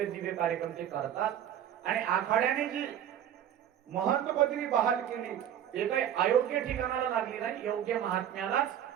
दिव्य कार्यक्रम ते करतात आणि आखाड्याने जी महंत पदवी बहाल केली ते काही अयोग्य ठिकाणाला लागली नाही, योग्य महात्म्यालाच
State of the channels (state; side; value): quieter; left; 10.2 dB